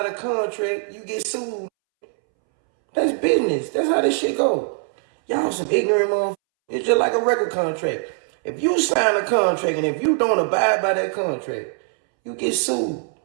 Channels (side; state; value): left; silent; 65 dB below the other